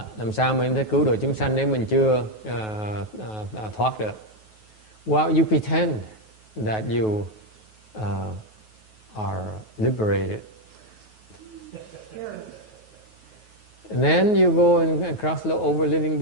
Làm sao mình có thể cứu độ chúng sanh nếu mình chưa thoát được? Well, you pretend that you are liberated. And then you go and cross over living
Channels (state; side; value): late; right; 9.3 ms